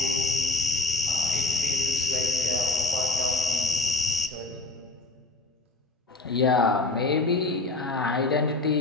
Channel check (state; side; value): quieter; right; 3.2 dB